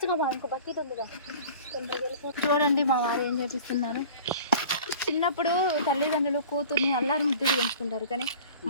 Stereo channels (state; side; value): inverted; both; correlation -0.42